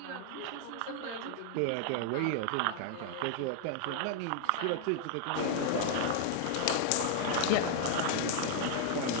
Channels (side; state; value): both; different; correlation 0.00